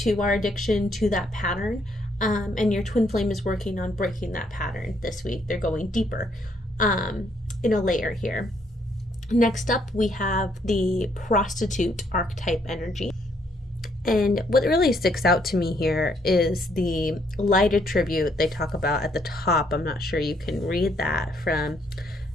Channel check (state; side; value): normal; both; correlation 0.70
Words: our addiction, to that pattern. And your twin flame is working on breaking that pattern this week. They're going deeper in a layer here. Next up, we have the Prostitute archetype energy. And what really sticks out to me here is the light attribute they talk about at the top. I'm not sure you can read that from